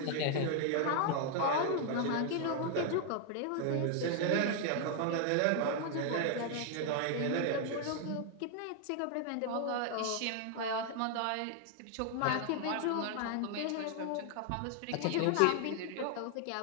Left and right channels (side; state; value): both; different; correlation 0.00